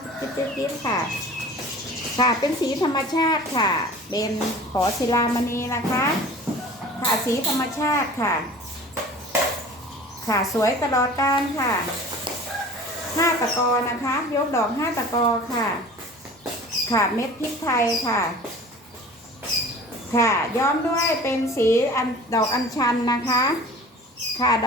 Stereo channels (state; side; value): normal; both; correlation 0.42